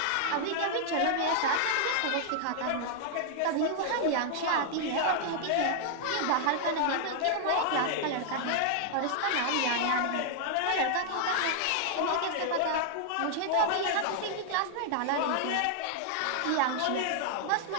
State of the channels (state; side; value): different; both; correlation -0.01